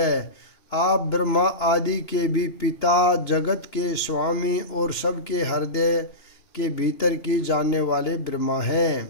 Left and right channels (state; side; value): late; right; 3.0 ms